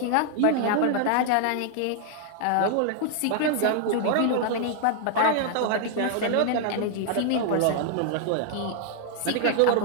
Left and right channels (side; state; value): both; different; correlation 0.00